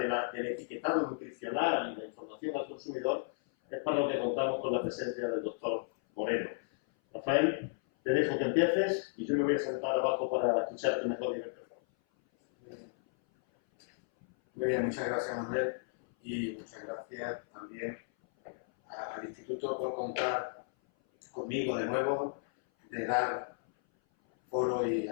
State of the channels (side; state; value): right; silent; 55 dB below the other